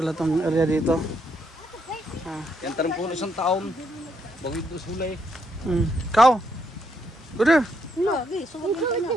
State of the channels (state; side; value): normal; both; correlation 0.76